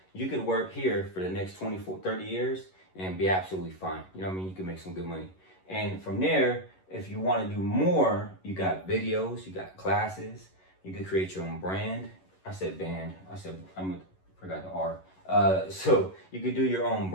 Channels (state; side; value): late; right; 11 ms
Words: You could work here for the next 24, 30 years and be absolutely fine. You know what I mean? You can make some good money. And from there, if you want to do more, you got videos, you got classes, you could create your own brand. I said band. I forgot the R. So you could do your own